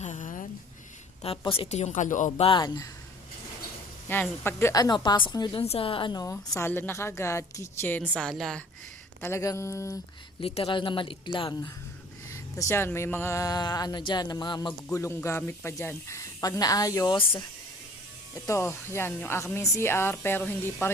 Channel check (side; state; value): both; normal; correlation 0.50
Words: Tapos ito yung kalooban. Yan, pag pasok nyo dun sa sala na kagad, kitchen, sala. Talagang literal na maliit lang. Tapos yan, may mga dyan, na mga magugulong gamit pa dyan. Pag naayos, ito, yan, yung aming CR, pero hindi pa